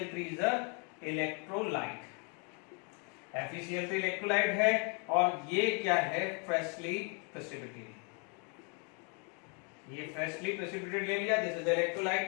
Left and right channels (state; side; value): quieter; right; 36.1 dB